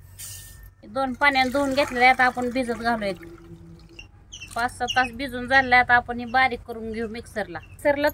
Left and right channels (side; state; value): both; identical; correlation 1.00